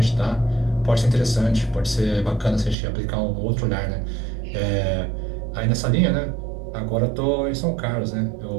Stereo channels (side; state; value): left; drops out; at 2.8 s